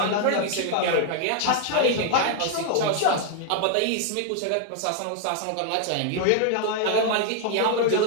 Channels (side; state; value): both; different; correlation 0.00